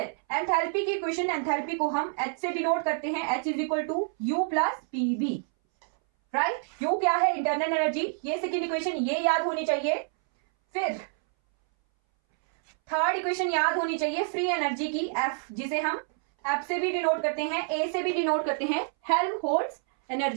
एंथैल्पी की इक्वेशन, एंथैल्पी को हम h से डिनोट करते हैं, h is equal to u plus pv, right? u क्या है? Internal energy. ये सेकेंड इक्वेशन ये याद होनी चाहिए। फिर थर्ड इक्वेशन याद होनी चाहिए फ्री एनर्जी की, f, जिसे हम f से भी डिनोट करते हैं, a से भी डिनोट करते हैं, हेल्महोल्ट्ज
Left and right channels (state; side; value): silent; left; 60 dB below the other